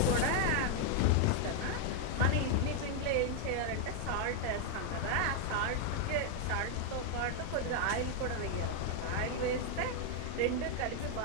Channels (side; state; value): both; different; correlation 0.00